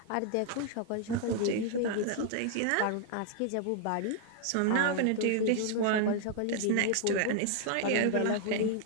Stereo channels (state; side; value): different; both; correlation 0.00